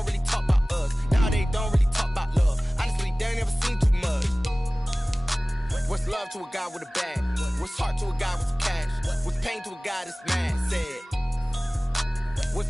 really talk about us. Now they don't really talk about love. Honestly, they ain't never seen too much. What's love to a guy with a bag? What's heart to a guy with some cash? What's pain to a guy that's mad? Said. What's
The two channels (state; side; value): normal; both; correlation 0.98